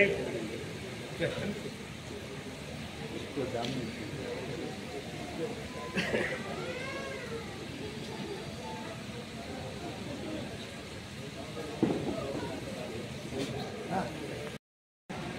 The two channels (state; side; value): identical; both; correlation 1.00